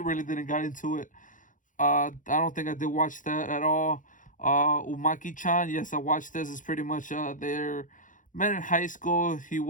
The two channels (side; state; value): right; late; 0.38 ms